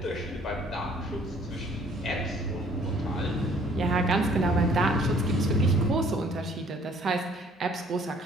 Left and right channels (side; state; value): both; normal; correlation 0.58